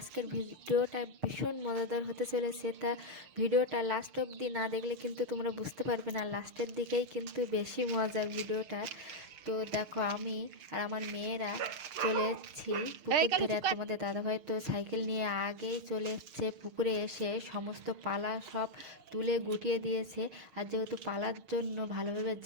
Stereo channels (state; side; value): late; left; 6.5 ms